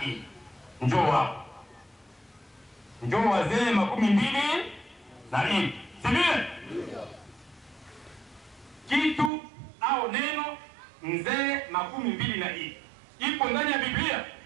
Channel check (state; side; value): drops out; left; at 9.3 s